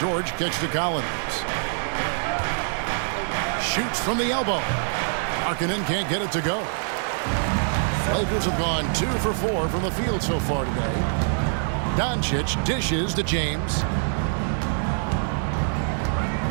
kicks to Collins. Shoots from the elbow. Markkanen can't get it to go. Lakers have gone 2 for 4 from the field so far today. Doncic dishes to James.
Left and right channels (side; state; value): left; silent; digital silence